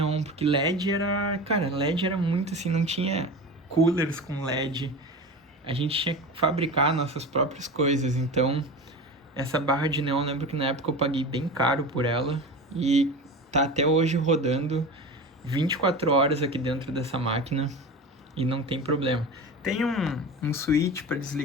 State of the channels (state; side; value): normal; both; correlation 0.30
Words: porque LED era... Cara, LED era muito assim, não tinha coolers com LED. A gente tinha que fabricar nossas próprias coisas, então... Essa barra de neon, lembro que na época eu paguei bem caro por ela e tá até hoje rodando 24 horas aqui dentro dessa máquina e não tem problema. Tem um switch para